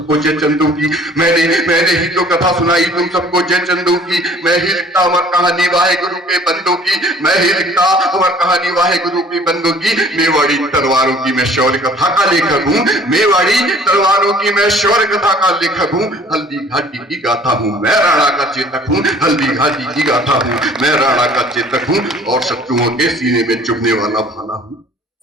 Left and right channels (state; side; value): normal; both; correlation 0.52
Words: जय चंदू की, मैंने ही तो कथा सुनाई तुम सबको जय चंदू की। मैं ही लिखता अमर कहानी वाहे गुरु के बंदों की, मैं ही लिखता अमर कहानी वाहे गुरु के बंदों की। मेवाड़ी तलवारों की मैं शौर्य कथा का लेखक हूँ, मेवाड़ी तलवारों की मैं शौर्य कथा का लेखक हूँ। हल्दी घाटी की गाथा हूँ मैं राणा का चेतक हूँ, हल्दी घाटी की गाथा हूँ मैं राणा का चेतक हूँ। और शत्रुओं के सीने में चुभने वाला भाला हूँ,